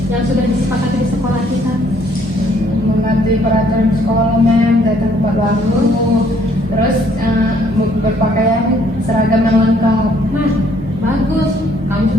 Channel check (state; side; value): normal; both; correlation 0.64